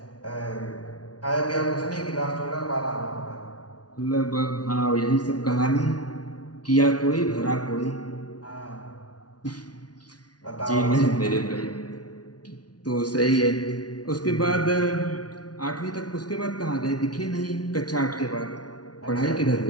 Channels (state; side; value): late; right; 0.69 ms